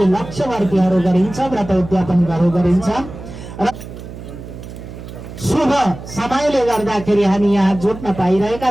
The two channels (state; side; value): noise; right; hum, 13 dB below the sound